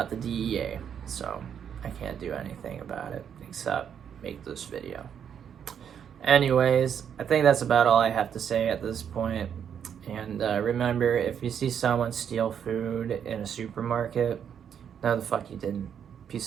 the DEA, so I can't do anything about it except make this video. Anyways, I think that's about all I have to say at this point. And remember, if you see someone steal food in a supermarket, no, the fuck you didn't.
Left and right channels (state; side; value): quieter; left; 8.3 dB